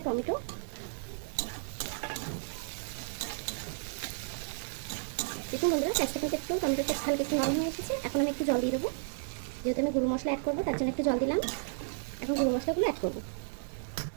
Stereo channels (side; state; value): left; silent; digital silence